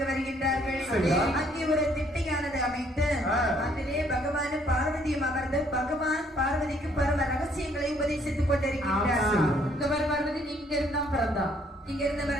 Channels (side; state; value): both; normal; correlation 0.65